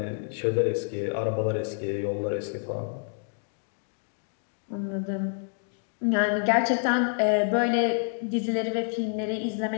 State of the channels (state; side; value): silent; right; 59 dB below the other